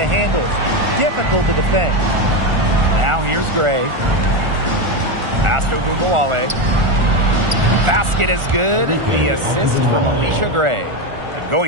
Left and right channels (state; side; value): late; left; 1.4 ms